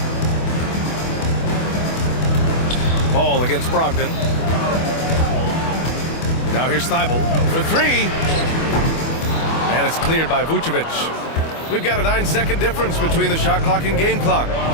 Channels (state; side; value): late; right; 25 ms